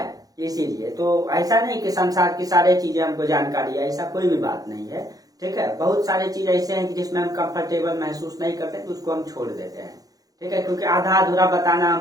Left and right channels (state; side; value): late; left; 0.18 ms